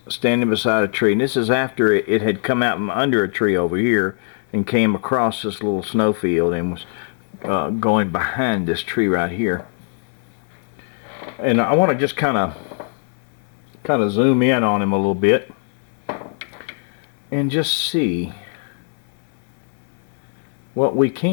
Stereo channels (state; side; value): silent; right; 65 dB below the other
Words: standing beside a tree. And this is after it had come out from under a tree over here and came across this little snowfield and was going behind this tree right here. And I want to just kind of zoom in on him a little bit and just see what we